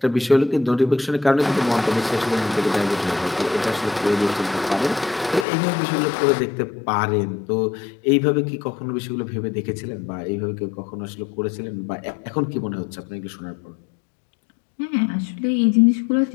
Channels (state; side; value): drops out; right; at 5.5 s